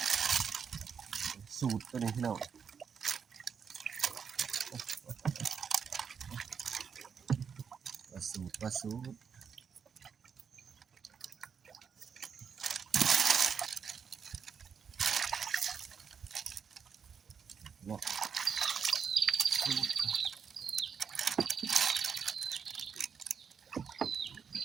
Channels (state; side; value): quieter; left; 6.7 dB